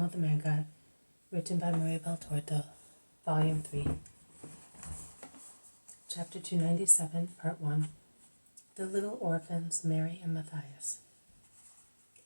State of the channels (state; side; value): inverted; both; correlation -1.00